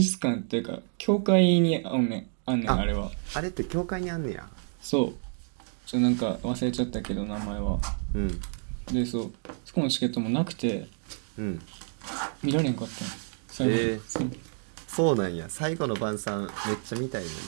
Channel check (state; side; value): silent; left; 57 dB below the other